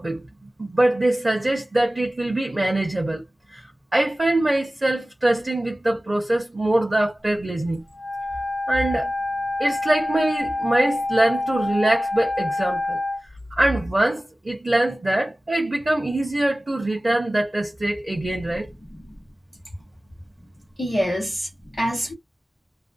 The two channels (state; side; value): normal; both; correlation 0.96